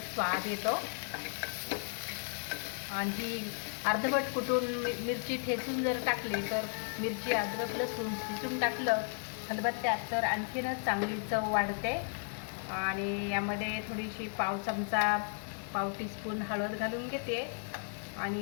स्वाद येतो। आणि अर्धवट कुटून मिरची ठेचून जर टाकली तर मिरची, अद्रक, लसूण ठेचून टाकलं खलबत्त्यात तर आणखीनच चांगली चव वाढते। आणि यामध्ये थोडीशी पाव टीस्पून हळद घालून घेते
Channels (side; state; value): right; silent; 55 dB below the other